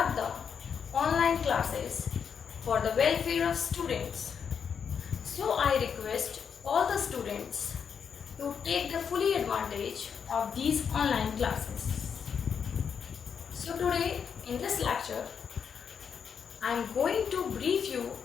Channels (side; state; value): right; quieter; 7.0 dB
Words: the online classes for the welfare of students. So I request all the students to take the fully advantage of these online classes. So today in this lecture, I am going to brief you